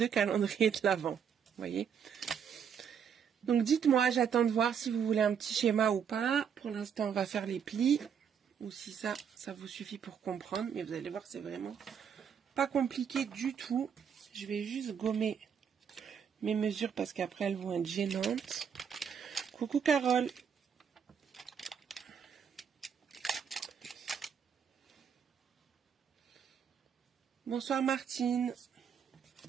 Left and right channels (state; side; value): quieter; left; 7.5 dB